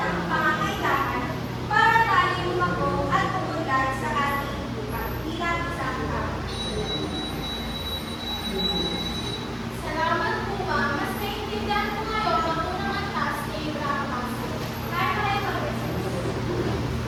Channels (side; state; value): both; identical; correlation 1.00